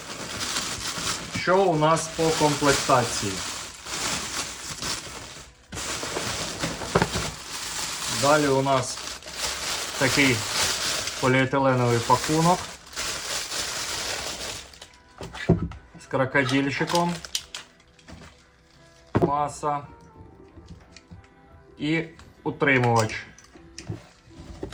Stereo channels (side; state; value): both; identical; correlation 1.00